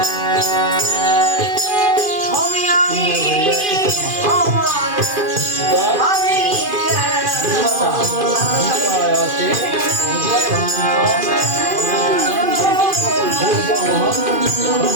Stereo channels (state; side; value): late; left; 2.5 ms